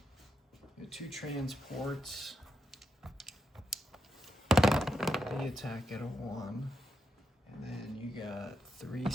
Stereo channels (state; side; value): normal; both; correlation 0.83